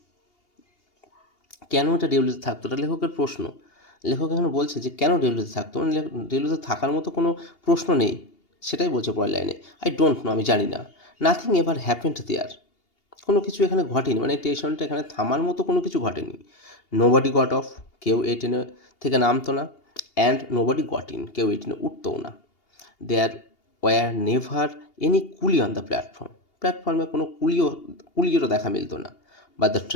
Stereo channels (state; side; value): late; right; 2.8 ms